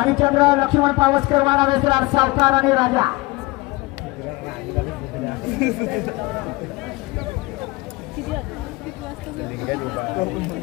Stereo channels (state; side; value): quieter; right; 22.6 dB